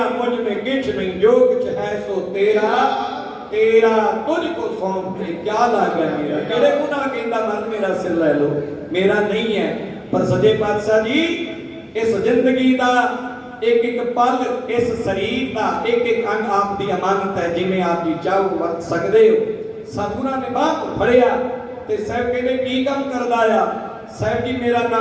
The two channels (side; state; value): both; identical; correlation 1.00